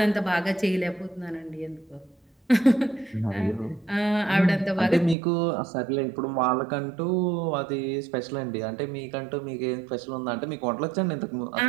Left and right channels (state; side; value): drops out; left; at 5.2 s